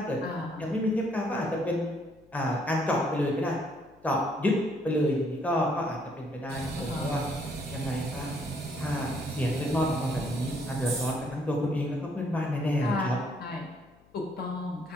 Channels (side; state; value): left; noise; hum, 29 dB below the sound